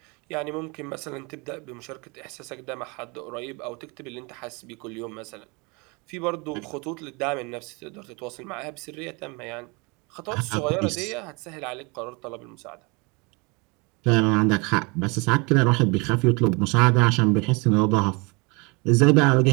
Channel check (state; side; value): quieter; left; 28.8 dB